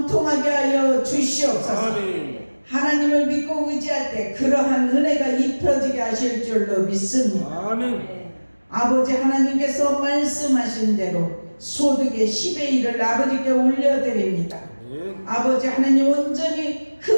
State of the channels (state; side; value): inverted; both; correlation -1.00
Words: 하여 주시옵소서. 아멘. 하나님을 믿고 의지할 때 그러한 은혜가 입혀지게 하실 줄로 믿습니다. 아멘. 아버지 하나님께서 말씀하신 대로 소득의 10의 1을 아버지께 올려드립니다. 아멘. 아버지 하나님 온전히